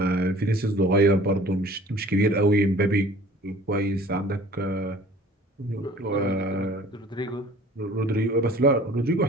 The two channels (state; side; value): normal; both; correlation 0.48